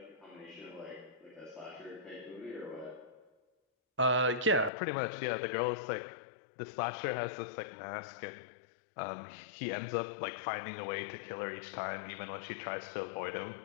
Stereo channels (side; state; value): right; drops out; at 4.7 s